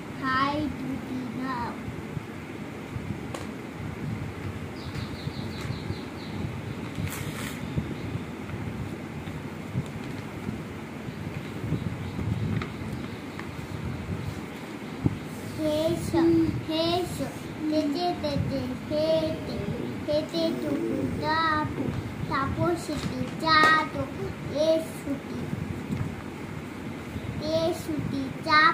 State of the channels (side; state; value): both; identical; correlation 1.00